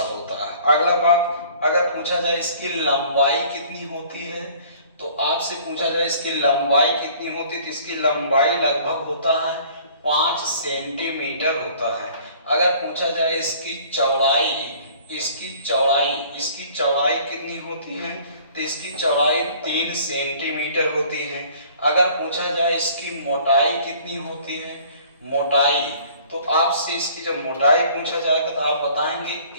होता है। अगला बात, अगर पूछा जाए इसकी लंबाई कितनी होती है, तो आपसे पूछा जाए इसकी लंबाई कितनी होती है, तो इसकी लंबाई लगभग होता है 5 सेंटीमीटर होता है। अगर पूछा जाए इसकी चौड़ाई कितनी होती है, तो इसकी चौड़ाई 3 सेंटीमीटर होती है। अगर पूछा जाए इसकी मोटाई कितनी होती है, मोटाई, तो आपसे इसकी जब मोटाई पूछा जाएगा तो आप बताएंगे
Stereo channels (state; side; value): inverted; both; correlation -0.52